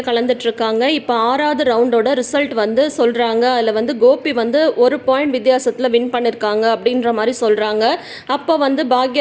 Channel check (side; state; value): both; identical; correlation 1.00